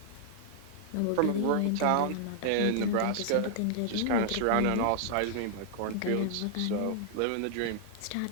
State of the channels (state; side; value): different; both; correlation -0.01